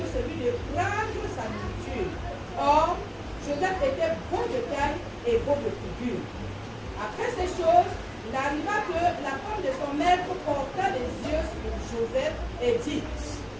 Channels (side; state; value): both; identical; correlation 1.00